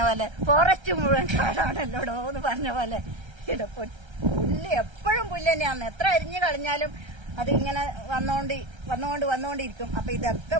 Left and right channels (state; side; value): late; left; 1.3 ms